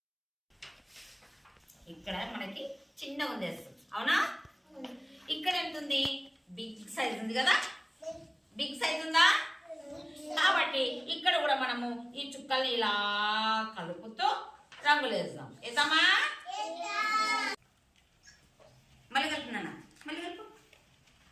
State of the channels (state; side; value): identical; both; correlation 1.00